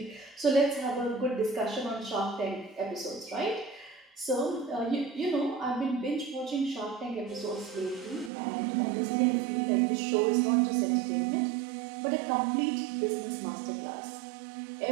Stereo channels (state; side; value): drops out; left; at 8.3 s